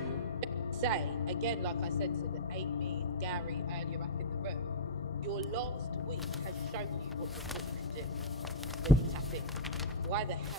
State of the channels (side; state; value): both; normal; correlation -0.12